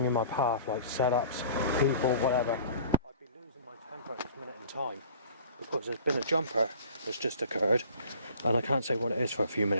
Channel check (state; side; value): inverted; both; correlation -0.47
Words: in my path, like setups, people, whatever, I'd be losing my temper at this minute in time, because there's been a jumper that's just occurred, and I can't say what it is for a few